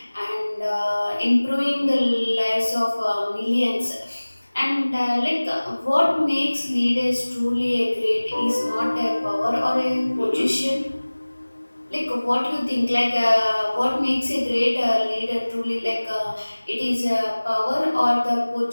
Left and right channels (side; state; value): both; inverted; correlation -1.00